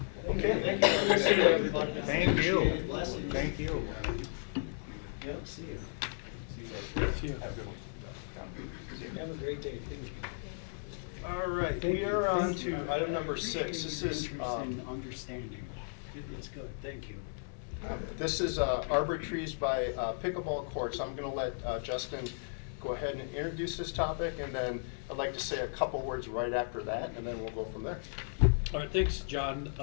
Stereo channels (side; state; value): right; silent; 55 dB below the other